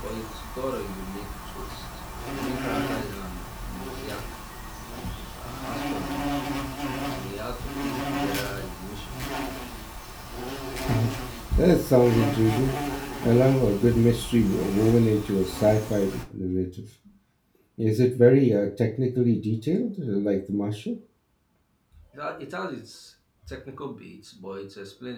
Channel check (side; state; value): both; identical; correlation 1.00